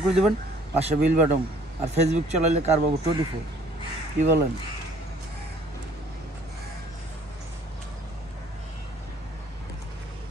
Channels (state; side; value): normal; both; correlation 0.57